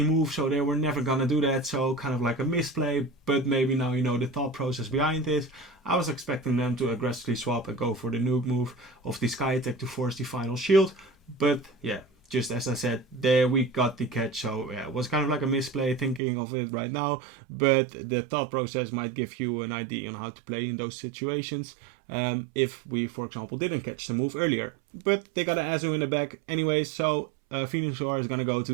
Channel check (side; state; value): left; drops out; at 16.2 s